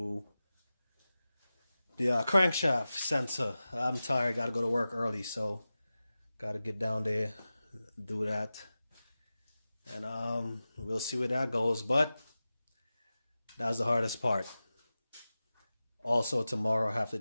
the crankshaft sensor. I'm tired, gotta go to work early, so gotta get down there, do that. And we'll see where that goes, but that was the hardest part. Also tomorrow I have to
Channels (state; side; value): inverted; both; correlation -0.95